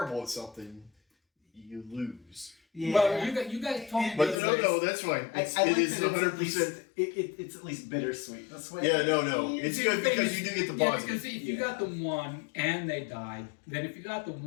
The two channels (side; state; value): right; drops out; at 4.4 s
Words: at something, you lose. Yeah. Well, you guys told me. But no, that's fine. I It like is that it's at 100%. least- It's at least bittersweet. That's why. Yeah, no. It's good because you do get the Yeah, positive. because if you got the 1 and they died, then if you got the